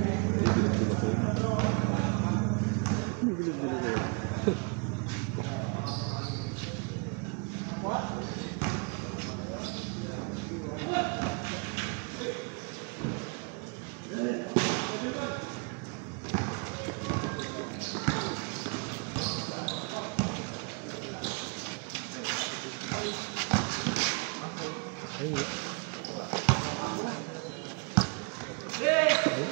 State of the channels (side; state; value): left; quieter; 32.5 dB